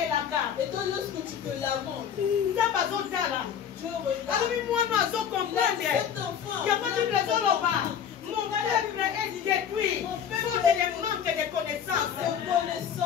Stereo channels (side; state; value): right; quieter; 8.3 dB